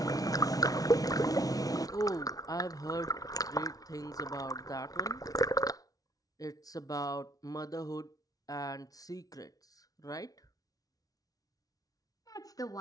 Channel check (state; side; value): late; right; 0.18 ms